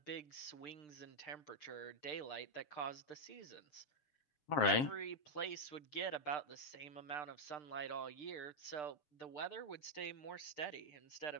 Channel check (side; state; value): right; late; 6.7 ms